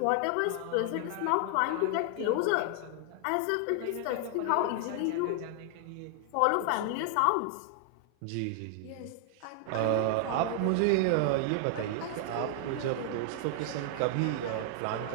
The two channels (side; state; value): both; different; correlation 0.00